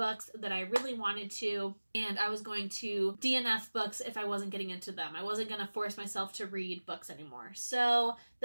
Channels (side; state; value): both; inverted; correlation -1.00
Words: that I really wanted to, and I was going to DNF books if I wasn't getting into them. I wasn't going to force myself to read books anymore. So